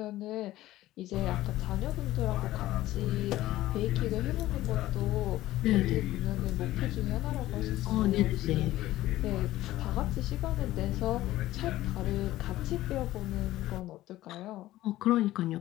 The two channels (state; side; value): quieter; right; 15.7 dB